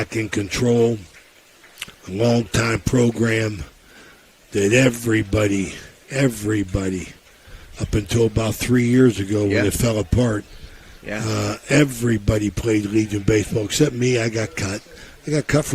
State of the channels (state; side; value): identical; both; correlation 1.00